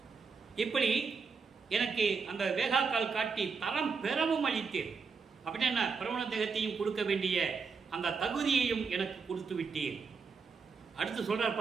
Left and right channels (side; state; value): left; quieter; 5.2 dB